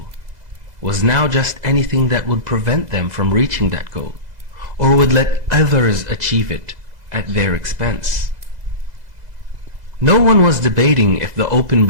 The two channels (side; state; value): left; late; 2.0 ms